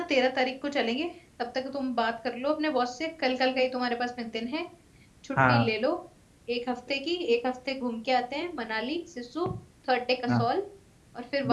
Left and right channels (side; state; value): both; identical; correlation 1.00